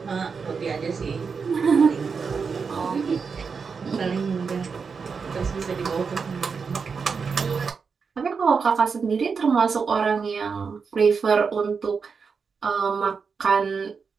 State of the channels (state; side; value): quieter; left; 5.5 dB